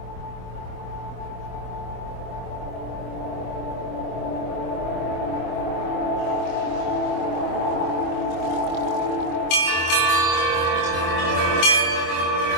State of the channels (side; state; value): right; late; 25 ms